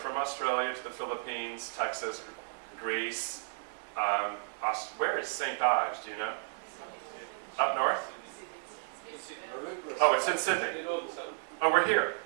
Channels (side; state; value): left; silent; 55 dB below the other